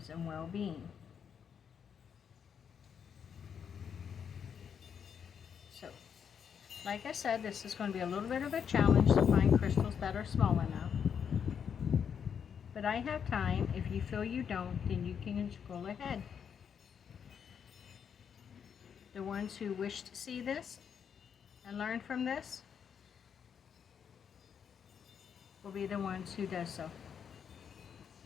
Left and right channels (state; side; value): quieter; right; 7.5 dB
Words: and well-being. So, like I said, this is going to be a little bit of a challenge to find crystals that are small enough. But I have time. If you feel you don't, then you can scroll ahead. The ones who wish to see this and learn from this will be the ones who does so.